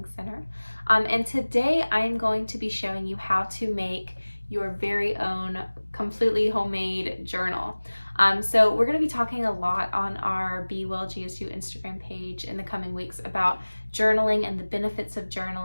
Center. And today I am going to be showing you how to make your very own completely homemade journal. So we're going to be talking a lot on our Be Well GSU Instagram page in the coming weeks about journaling and the benefits of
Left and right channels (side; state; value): both; inverted; correlation -1.00